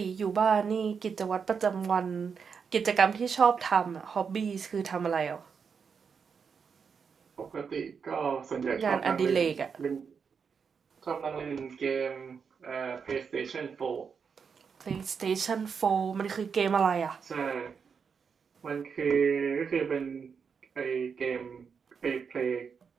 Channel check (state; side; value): quieter; left; 6.2 dB